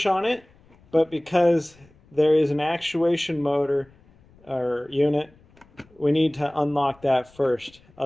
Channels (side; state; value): left; noise; rumble, 29 dB below the sound